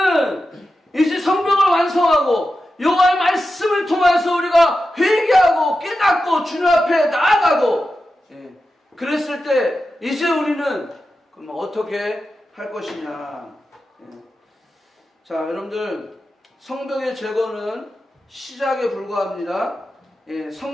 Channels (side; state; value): both; normal; correlation 0.91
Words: 이제 성경을 완성하고 여호와의 말씀을 통해서 우리가 회개하고 깨닫고 주님 앞에 나아가고, 예. 그랬을 때 이제 우리는 그럼 어떻게 할 것이냐. 예. 자, 여러분들 성벽의 제거는 시작에 불과합니다. 예.